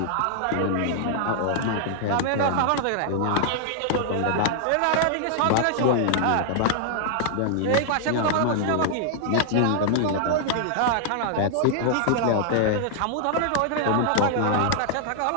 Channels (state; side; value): different; both; correlation -0.01